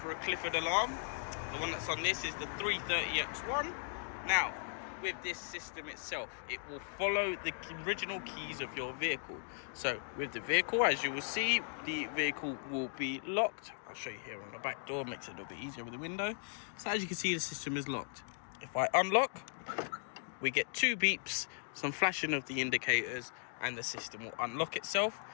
a Clifford alarm. The one that's on this is the 330X1. Now, with this system itself, it will follow the original keys of your vehicle. So with the vehicle, as you will see, the vehicle will be locked. I'll show you here on the back door, makes it a little bit easier with the window. So as you can see, the system is locked. If I unlock, we get 2 beeps, some flashing of the indicators, and the system will unlock itself.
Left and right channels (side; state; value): right; silent; digital silence